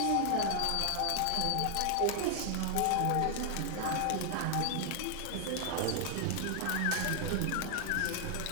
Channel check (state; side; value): different; both; correlation 0.00